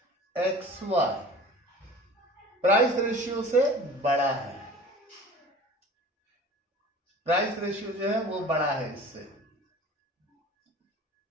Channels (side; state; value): both; normal; correlation 0.42